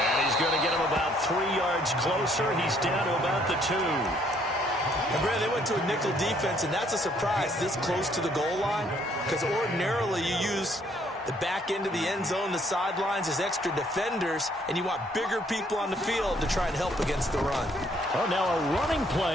he's going to get him about 3 yards closer. He's down to about the 2. And Brad, they went to a nickel defense, and that's a surprise this close to the goal line, because ordinarily you use the back end of the end zone, the sidelines as extra defenders, and you want bigger people on the field to try and help against the run. Oh, now a running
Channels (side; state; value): both; normal; correlation 0.65